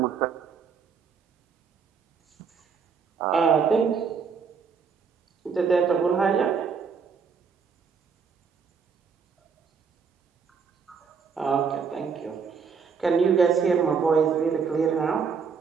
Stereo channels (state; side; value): quieter; left; 5.9 dB